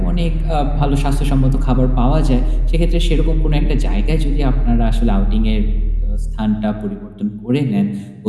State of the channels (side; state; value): both; identical; correlation 1.00